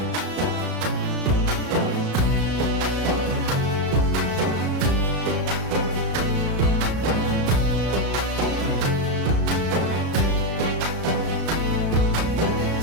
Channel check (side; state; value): left; late; 34 ms